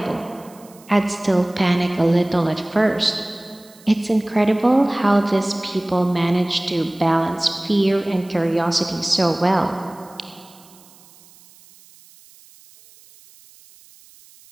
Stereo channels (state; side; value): noise; right; hiss, 26 dB below the sound